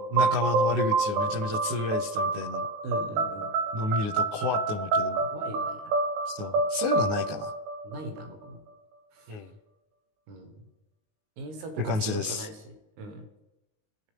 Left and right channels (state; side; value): late; left; 19 ms